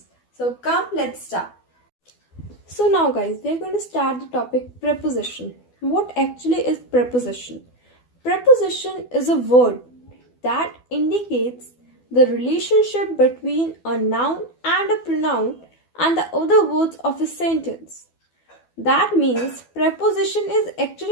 So come, let's start. So now guys, we are going to start the topic preposition. What actually is preposition? Preposition is a word that indicates the relationship between a noun and a pronoun and the other words of a sentence. That means preposition is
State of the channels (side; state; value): right; late; 12 ms